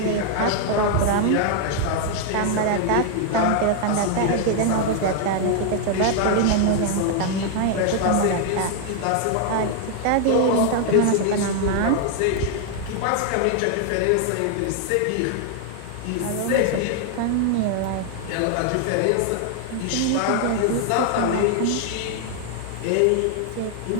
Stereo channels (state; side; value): different; both; correlation 0.00